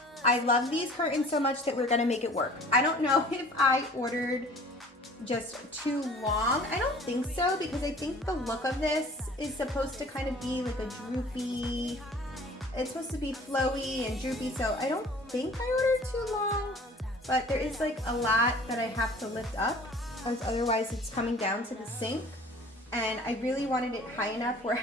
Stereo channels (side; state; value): both; normal; correlation 0.49